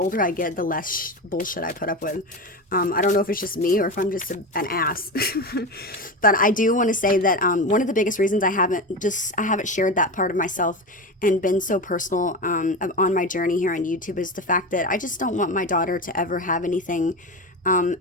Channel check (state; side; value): normal; both; correlation 0.22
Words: I get, the less bullshit I put up with. I don't know if it's just me or if I'm just an ass. But I do want to say that one of the biggest reasons I haven't shared that part of myself and been so personal on my journey here on YouTube is the fact that I just don't want my daughter to ever have anything,